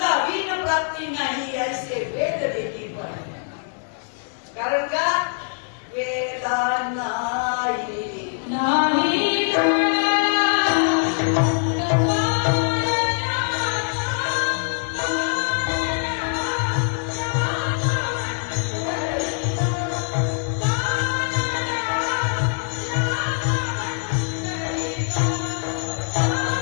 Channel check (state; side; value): silent; right; 63 dB below the other